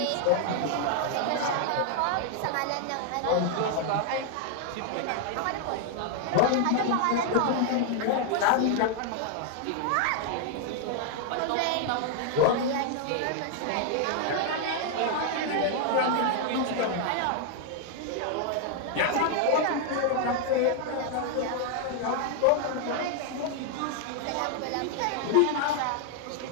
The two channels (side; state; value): both; different; correlation 0.00